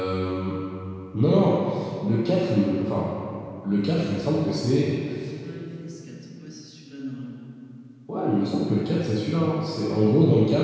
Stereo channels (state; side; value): identical; both; correlation 1.00